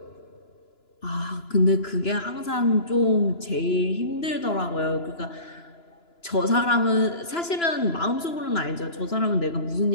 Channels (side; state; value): right; late; 2.9 ms